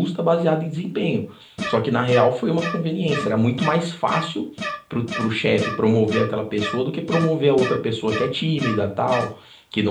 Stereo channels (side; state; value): both; identical; correlation 1.00